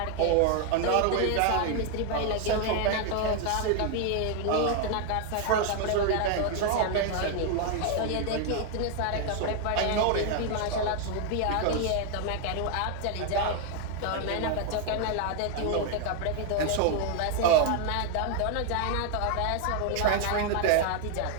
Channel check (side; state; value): both; different; correlation 0.00